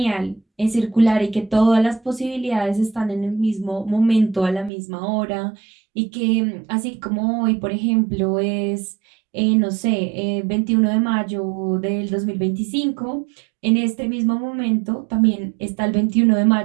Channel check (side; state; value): left; drops out; at 4.7 s